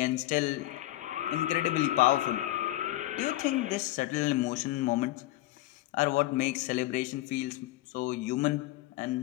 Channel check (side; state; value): right; quieter; 16.3 dB